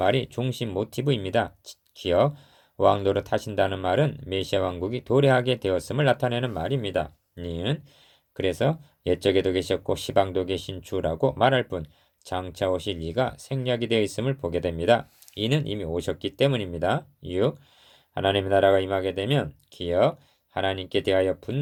중심 모티브입니다. 기억 왕노릇 하신다는 말은 메시아 왕국이 도래하게 되었음을 나타내는 말입니다. 니은 그래서 옛적에도 계셨고 시방도 계신 주라고 말할 뿐 장차 오실 이가 생략이 되어 있음을 보게 됩니다. 이는 이미 오셨기 때문입니다. 6. 하나님의 나라가 임하게 되면 기억 하나님께 대하여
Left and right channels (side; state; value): both; identical; correlation 1.00